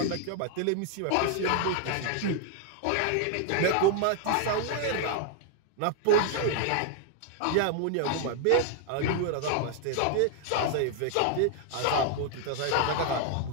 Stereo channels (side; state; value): both; different; correlation 0.00